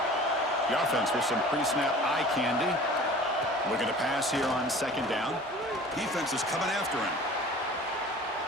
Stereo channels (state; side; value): normal; both; correlation 0.44